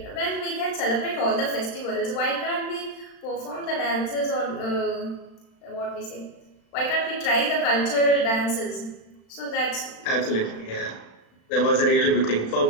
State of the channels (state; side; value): late; right; 35 ms